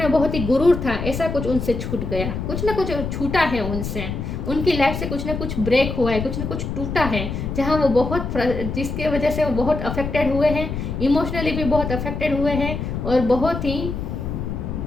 बहुत ही गुरूर था, ऐसा कुछ उनसे छूट गया। कुछ ना कुछ छूटा है उनसे, उनकी लाइफ से कुछ ना कुछ ब्रेक हुआ है, कुछ ना कुछ टूटा है, जहाँ वो बहुत जिसके वजह से वो बहुत अफेक्टेड हुए हैं, इमोशनली भी बहुत अफेक्टेड हुए हैं और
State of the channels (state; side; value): noise; left; rumble, 4 dB below the sound